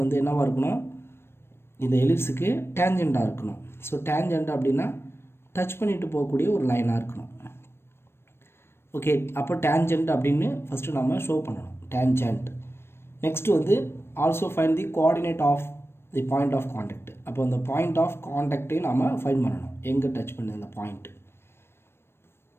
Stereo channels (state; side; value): late; right; 0.12 ms